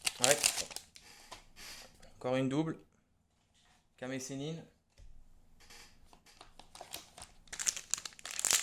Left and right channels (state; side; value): identical; both; correlation 1.00